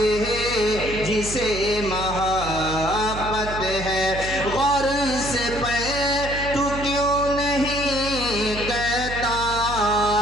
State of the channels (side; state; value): right; noise; hum, 9 dB below the sound